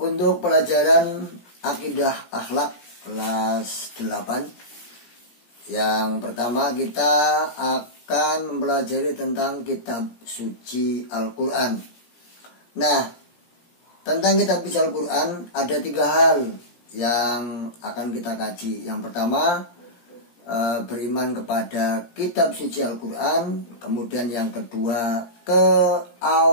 pelajaran Akidah Akhlak kelas 8, yang pertama kita akan mempelajari tentang kitab suci Al-Quran. Nah, tentang kitab suci Al-Quran ada 3 hal yang akan kita kaji. Yang pertama, beriman kepada kitab suci Al-Quran. Kemudian yang kedua,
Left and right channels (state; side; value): late; right; 17 ms